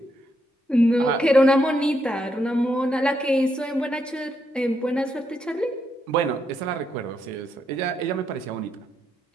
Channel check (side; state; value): both; normal; correlation 0.79